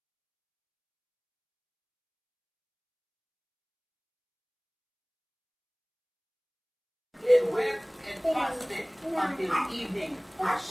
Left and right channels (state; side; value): identical; both; correlation 1.00